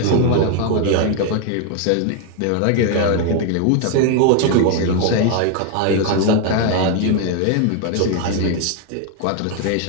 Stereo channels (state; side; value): different; both; correlation 0.01